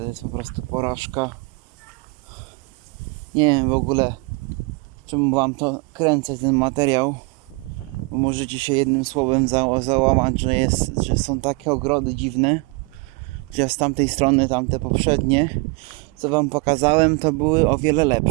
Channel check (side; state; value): left; quieter; 29.5 dB